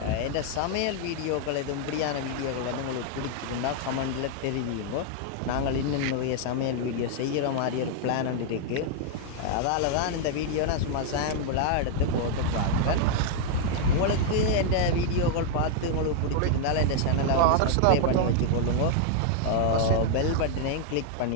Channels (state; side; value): different; both; correlation -0.01